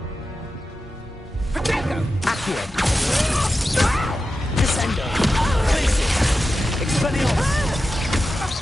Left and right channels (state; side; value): normal; both; correlation 0.91